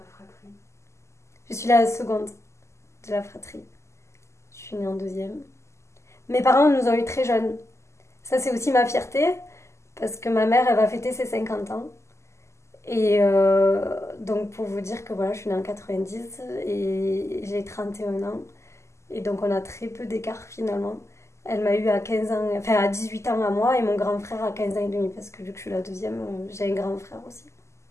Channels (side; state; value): right; late; 0.13 ms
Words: fratrie? Je suis la seconde de la fratrie. Je suis née en deuxième. Mes parents nous ont eu très jeunes. Ça, c'est aussi ma fierté, parce que ma mère, elle va fêter ses 50 ans. Et donc, pour vous dire que voilà, je suis née en 90 et j'ai 31 ans. Et donc, on a très peu d'écart finalement. Elle m'a eu à 15 ans, enfin à 18 ans à moi, et mon grand frère à 15 ans et demi, parce que vu que je suis la deuxième, j'ai un grand frère aussi.